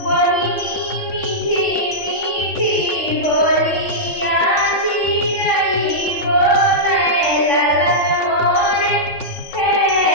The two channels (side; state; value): right; late; 3.6 ms